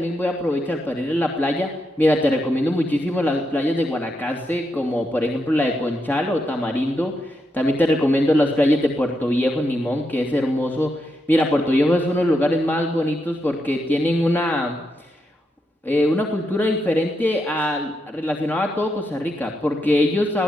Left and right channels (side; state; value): both; normal; correlation 0.83